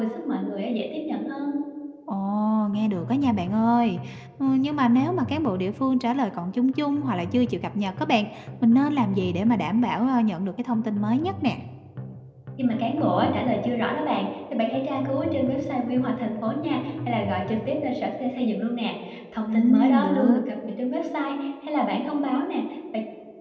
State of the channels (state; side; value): identical; both; correlation 1.00